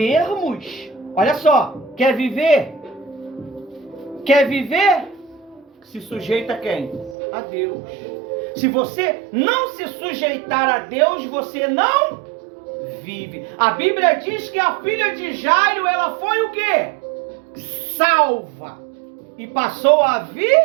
Olha só, quer viver? Quer viver? Se sujeita a quem? A Deus. Se você não se sujeitar a Deus, você não vive. A Bíblia diz que a filha de Jairo, ela foi o quê? Salva. E passou a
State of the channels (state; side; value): drops out; left; at 7.2 s